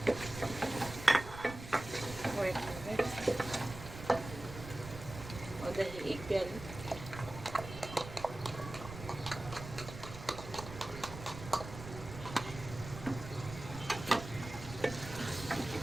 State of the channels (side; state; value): right; noise; rumble, 11 dB below the sound